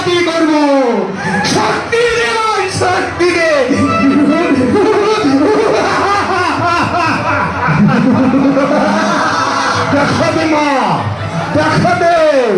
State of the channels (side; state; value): both; identical; correlation 1.00